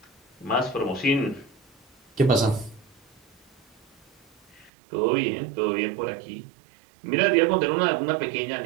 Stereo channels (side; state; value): left; drops out; at 4.7 s